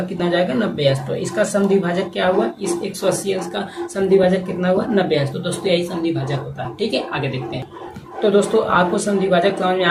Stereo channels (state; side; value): identical; both; correlation 1.00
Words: कितना हो जाएगा 90 अंश। तो इसका समद्विभाजक क्या हुआ, इस 180 अंश का समद्विभाजक कितना हुआ 90 अंश। तो दोस्तों यही समद्विभाजक होता है। ठीक है आगे देखते हैं। तो दोस्तों आपको समद्विभाजक समझ में